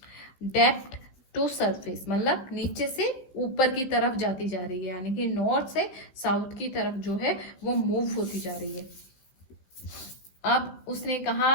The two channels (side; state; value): right; late; 16 ms